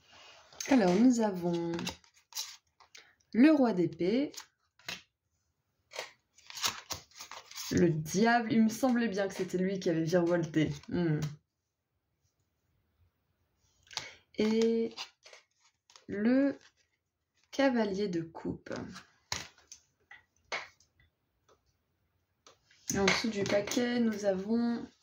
Alors nous avons le roi d'épée. Le diable, il me semblait bien que c'était lui qui avait virevolté. Et le cavalier de coupe. Et en dessous du paquet, nous avons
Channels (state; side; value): identical; both; correlation 1.00